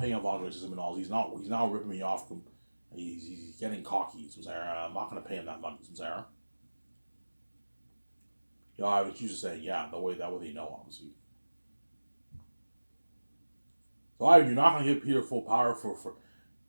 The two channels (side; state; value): both; inverted; correlation -1.00